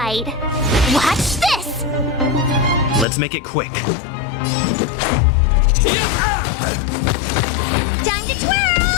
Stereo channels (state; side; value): drops out; right; at 3.1 s